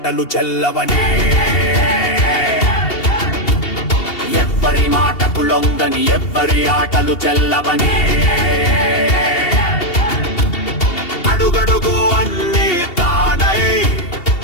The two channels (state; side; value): late; right; 2.7 ms